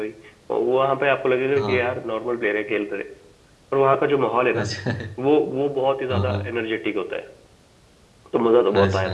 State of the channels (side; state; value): both; identical; correlation 1.00